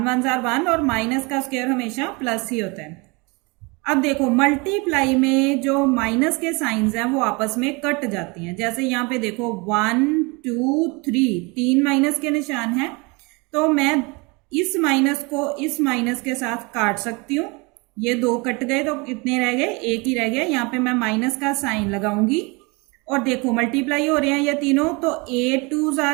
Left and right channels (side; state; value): left; quieter; 27.9 dB